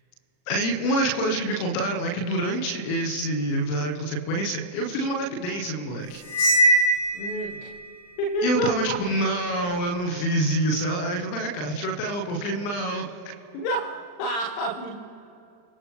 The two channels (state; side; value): late; right; 40 ms